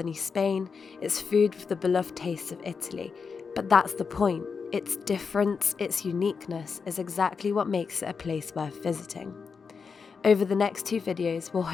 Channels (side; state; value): right; quieter; 5.5 dB